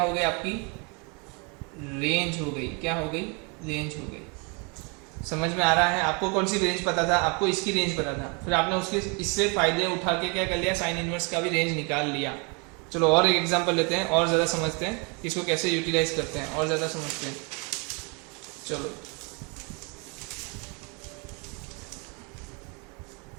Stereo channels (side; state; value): left; quieter; 32.9 dB